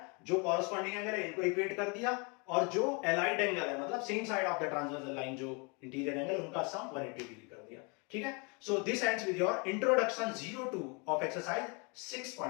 जो कॉरस्पॉन्डिंग एंगल है इनको इक्वेट कर दिया, और जो एलाइड एंगल है मतलब same side of the transversal line, जो इंटीरियर एंगल, उनका सम 180 डिग्री कर दिया। ठीक है, so this ends with your introduction 02 of exercise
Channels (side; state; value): right; quieter; 32.2 dB